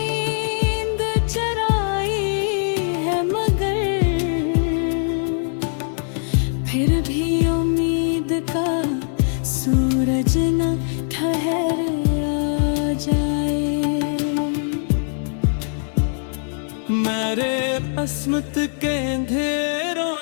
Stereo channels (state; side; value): silent; right; digital silence